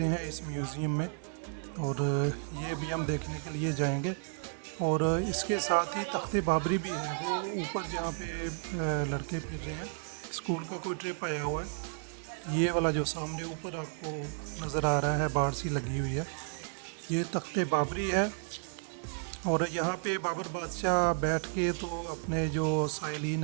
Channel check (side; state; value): left; silent; 56 dB below the other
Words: हैं इस म्यूज़ियम में, और ये भी हम देखने के लिए जाएंगे। और इसके साथ ही तख्ते बाबरी भी है, वो ऊपर जहाँ पे लड़के फिर रहे हैं, स्कूल का कोई ट्रिप आया हुआ है। ये वाला जो सामने ऊपर आपको नज़र आ रहा है, बाढ़ सी लगी हुई है, ये तख्ते बाबरी है। और यहाँ पे बाबर बादशाह बैठ के तो अपने जो साइलिन